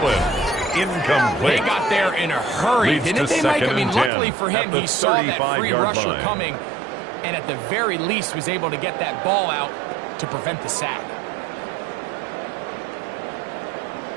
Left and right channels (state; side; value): drops out; left; at 4.1 s